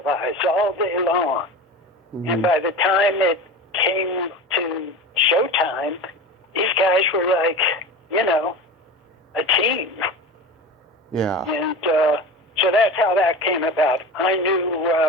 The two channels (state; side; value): normal; both; correlation 0.31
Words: all day long. Mm-hmm. And by the time it came to showtime, these guys were like, a team. Yeah. And so that's how that came about. I